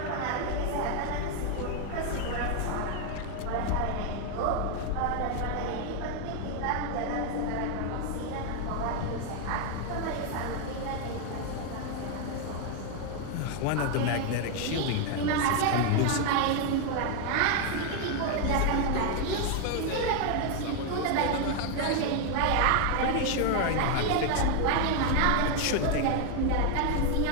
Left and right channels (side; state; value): both; different; correlation 0.01